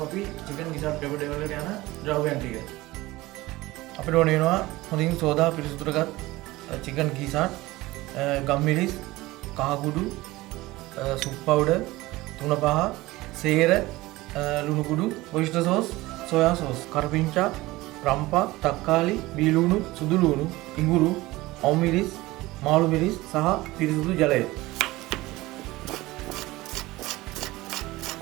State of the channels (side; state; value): left; quieter; 19.3 dB